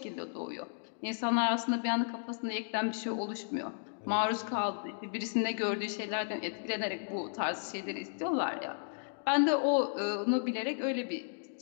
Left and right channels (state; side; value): silent; right; digital silence